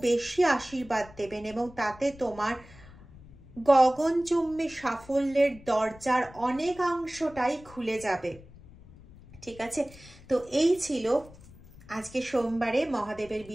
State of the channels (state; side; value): noise; left; rumble, 21 dB below the sound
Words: বেশি আশীর্বাদ দেবেন, এবং তাতে তোমার গগনচুম্বী সাফল্যের দরজার অনেকাংশটাই খুলে যাবে, ঠিক আছে? তো এই ছিল আজকে সোমবারে মহাদেবের